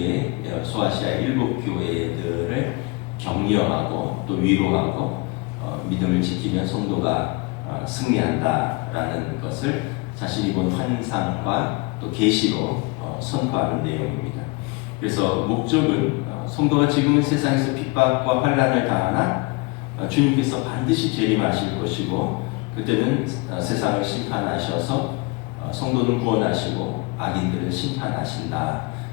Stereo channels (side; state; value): right; quieter; 26.5 dB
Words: 소아시아 7교회들을 격려하고 또 위로하고 믿음을 지키면 성도가 승리한다라는 것을 자신이 본 환상과 또 계시로 선포하는 내용입니다. 그래서 목적은 성도가 지금은 세상에서 핍박과 환난을 당하나 주님께서 반드시 재림하실 것이고 그때는 세상을 심판하셔서 성도는 구원하시고 악인들은 심판하신다.